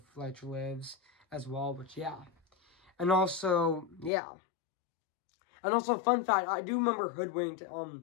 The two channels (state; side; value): drops out; right; at 4.1 s